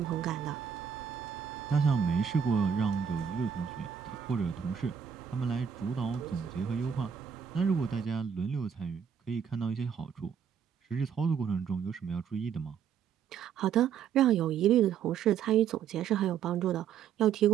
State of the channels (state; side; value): quieter; left; 7.7 dB